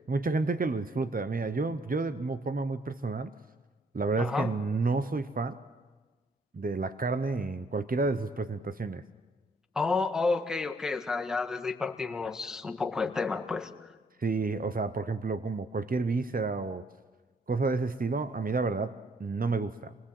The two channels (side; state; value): both; normal; correlation 0.67